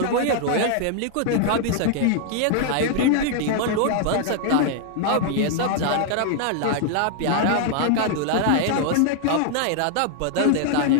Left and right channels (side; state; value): both; different; correlation 0.00